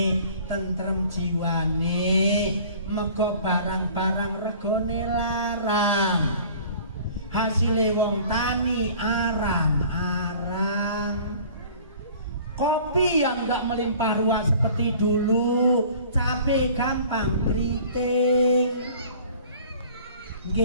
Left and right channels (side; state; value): both; inverted; correlation -0.48